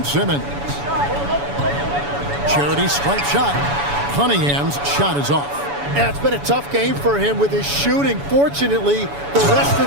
Simmons. Charity stripe shot. Cunningham's shot is off. And it's been a tough game for him with his shooting. Fortunately, the rest of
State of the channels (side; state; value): left; late; 7.0 ms